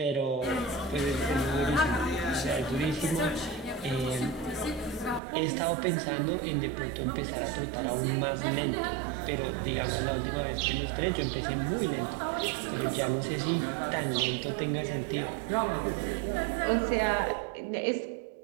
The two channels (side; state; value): left; drops out; at 5.2 s